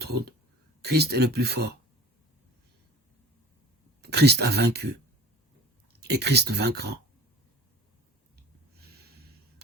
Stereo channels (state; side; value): normal; both; correlation 0.41